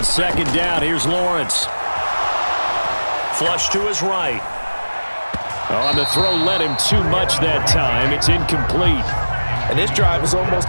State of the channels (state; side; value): inverted; both; correlation -1.00